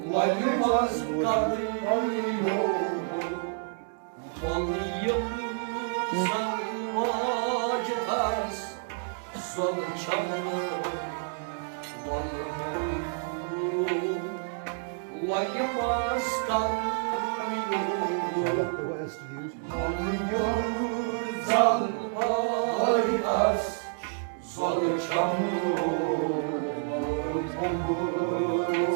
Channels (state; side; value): silent; left; digital silence